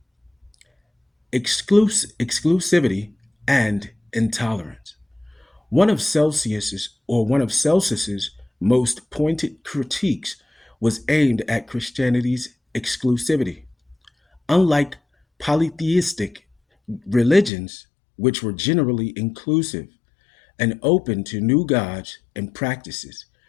exclusivity and intolerance. One of Celsus's most pointed critiques was aimed at Christianity's exclusivity. Unlike polytheistic religions, which were generally inclusive and open to new gods and practices,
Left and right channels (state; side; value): drops out; right; at 17.5 s